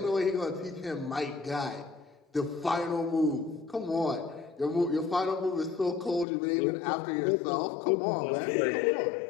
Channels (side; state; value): right; drops out; at 6.2 s